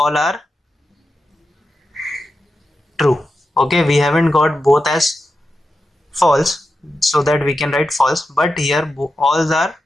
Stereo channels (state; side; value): normal; both; correlation 0.89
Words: are true. Okay, we haven't got both as false, so that we can write false, but here all are